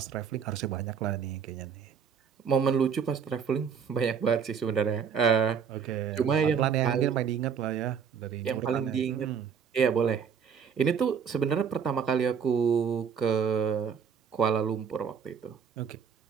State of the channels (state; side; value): quieter; left; 7.0 dB